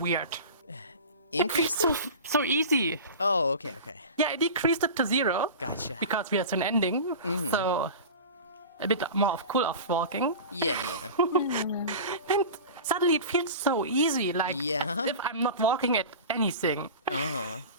Increased So it? so easy. Oh, okay, okay. Yeah, I decreased it to 0 Gotcha. because we are soon ending. So a bit more of cool off walking. Yeah, yeah. And suddenly it feels so easy, like Yeah. as if I'm not walking at anything. Uh-huh.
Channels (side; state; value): both; inverted; correlation -0.32